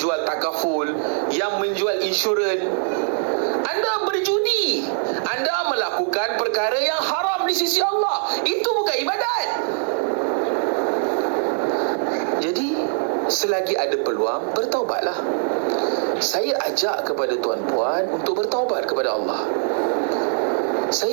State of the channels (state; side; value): silent; left; 61 dB below the other